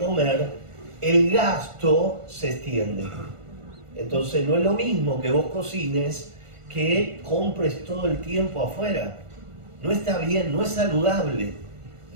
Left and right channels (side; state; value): left; late; 1.4 ms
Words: el gasto se extiende. Entonces no es lo mismo que vos cocines que compres todo el tiempo afuera. No está bien, no es saludable.